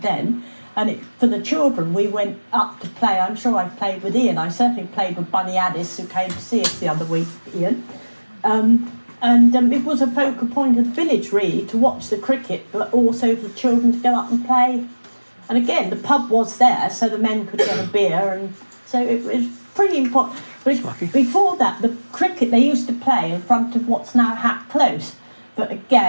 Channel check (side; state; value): both; inverted; correlation -1.00